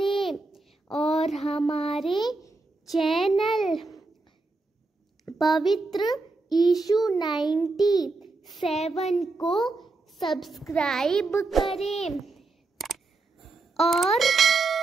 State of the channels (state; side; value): quieter; left; 3.5 dB